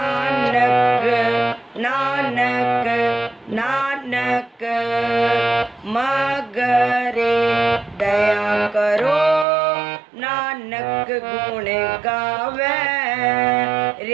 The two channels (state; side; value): drops out; left; at 9.5 s